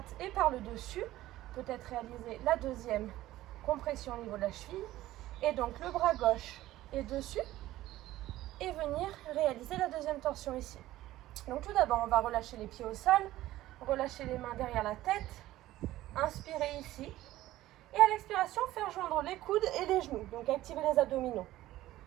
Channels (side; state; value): left; quieter; 15.4 dB